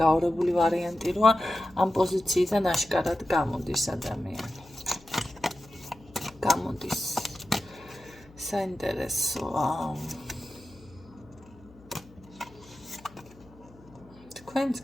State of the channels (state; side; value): noise; left; hum, 23 dB below the sound